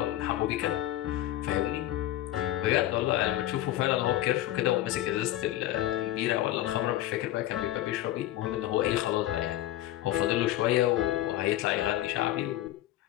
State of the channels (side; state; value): right; quieter; 14.3 dB